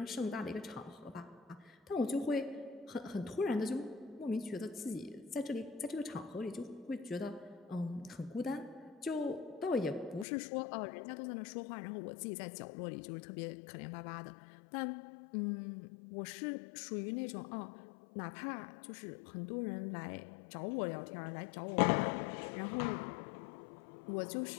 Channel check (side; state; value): right; drops out; at 10.2 s